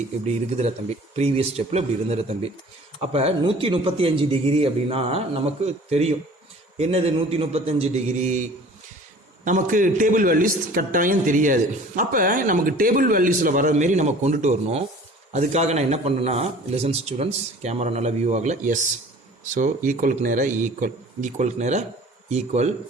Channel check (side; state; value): both; normal; correlation 0.47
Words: இப்படி இருக்குதுல தம்பி. ப்ரீவியஸ் ஸ்டெப்பில் இப்படி இருந்துற தம்பி. அப்போ 135 டிகிரி அப்படின்னா நமக்கு தெரியும். என்னது 135 டிகிரி? நமக்கு டேபிள் வேல்யூஸ் கட்டாயம் தெரியாது. அப்போ நமக்கு டேபிள் வேல்யூஸில் வர மாரி நம்ம கொண்டுட்டு வரணும். அதுக்காக நான் என்ன பண்ணேன்னா, லிசன் ஸ்டூடெண்ட்ஸ், கேமரா நல்லா வியூ ஆகலை. எஸ், ஸோ ஈக்குவலுக்கு நேராக ஈக்குவலுக்கு நேராக ஈக்குவல்.